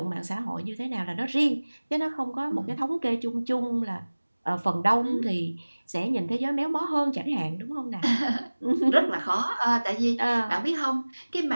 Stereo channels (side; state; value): both; inverted; correlation -1.00